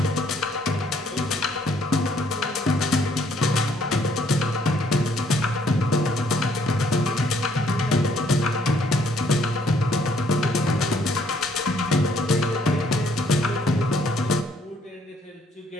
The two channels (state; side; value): normal; both; correlation 0.66